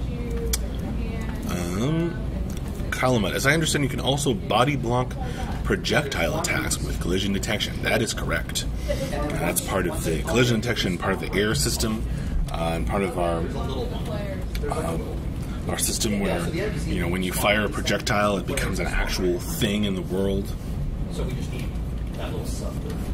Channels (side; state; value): both; identical; correlation 1.00